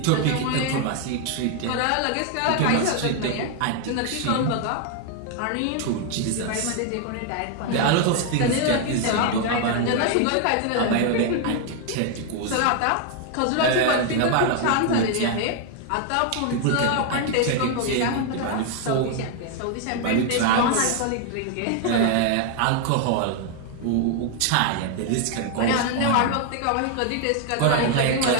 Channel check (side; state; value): both; different; correlation 0.01